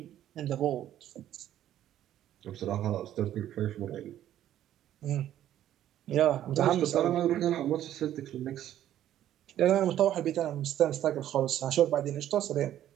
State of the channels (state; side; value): quieter; left; 11.9 dB